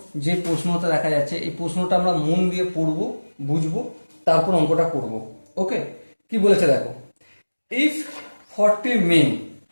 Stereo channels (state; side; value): inverted; both; correlation -1.00